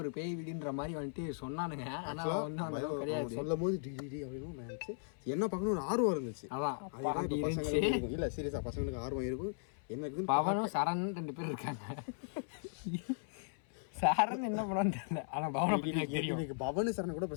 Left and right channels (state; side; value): silent; right; 53 dB below the other